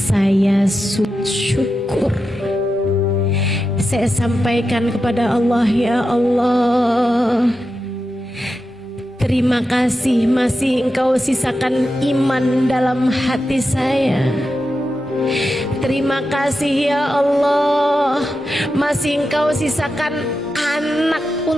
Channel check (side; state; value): both; normal; correlation 0.89